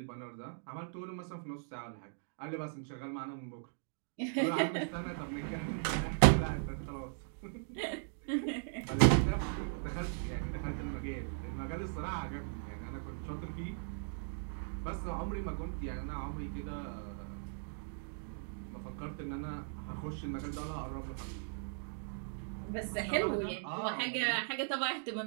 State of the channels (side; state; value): left; silent; digital silence